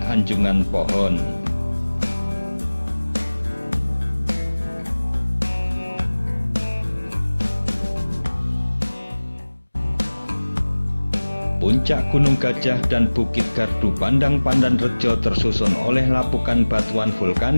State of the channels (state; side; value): inverted; both; correlation -1.00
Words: anjungan pohon. Puncak Gunung Gajah dan Bukit Gardu Pandang Pandanrejo tersusun oleh lapukan batuan